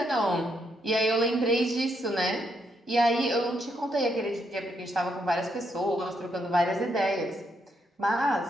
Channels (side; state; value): both; normal; correlation 0.77